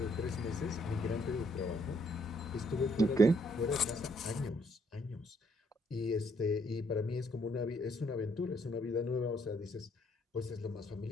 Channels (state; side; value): normal; both; correlation 0.69